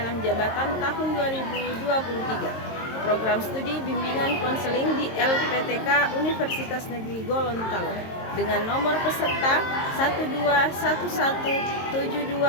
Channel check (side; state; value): right; late; 22 ms